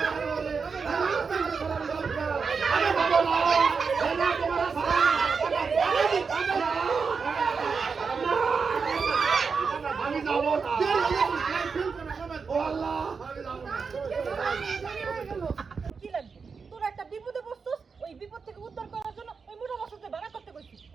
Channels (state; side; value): quieter; left; 5.3 dB